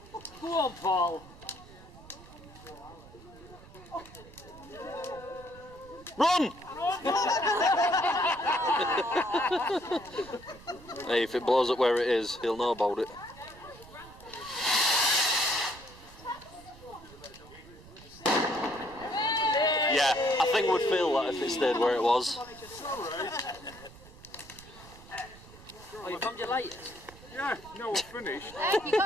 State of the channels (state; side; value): noise; right; rumble, 20 dB below the sound